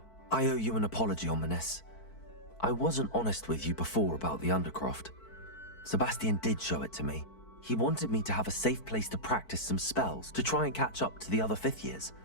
I owe you an apology, Ominous. I wasn't honest with you before about the Undercroft. Sebastian did show it to me. He wanted me to have a safe place to practice some spells, to try and catch up to the other fifth years.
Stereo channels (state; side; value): late; right; 4.5 ms